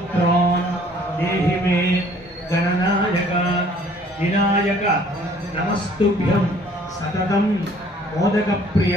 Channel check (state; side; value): normal; both; correlation 0.57